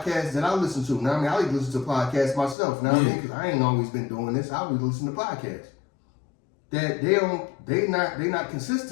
that I listen to. Now I mean, I like to listen to podcasts myself. Now I mean, because I ain't always been doing this. I always listen to podcasts. That they not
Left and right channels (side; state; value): right; drops out; at 2.6 s